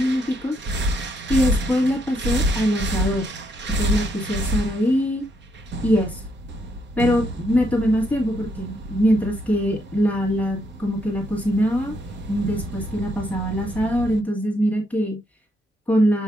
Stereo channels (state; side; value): normal; both; correlation 0.76